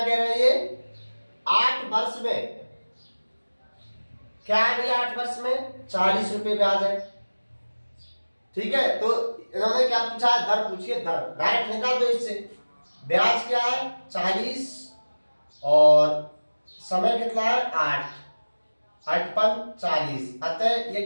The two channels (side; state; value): both; inverted; correlation -1.00